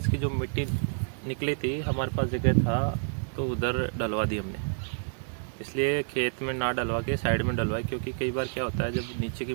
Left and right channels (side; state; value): left; silent; 59 dB below the other